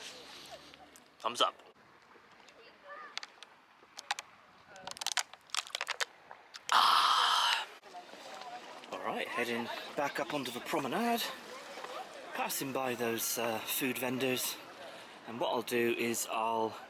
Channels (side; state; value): both; identical; correlation 1.00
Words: Thumbs up. Alright, heading back up onto the promenade, passing by those food vendors, and what I'll do is I'll